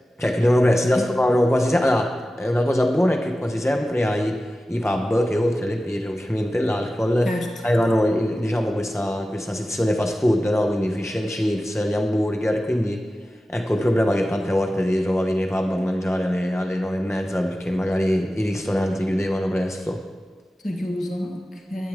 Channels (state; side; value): normal; both; correlation 0.94